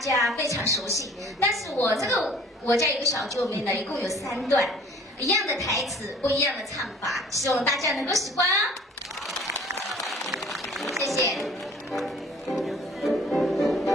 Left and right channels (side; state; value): both; normal; correlation 0.51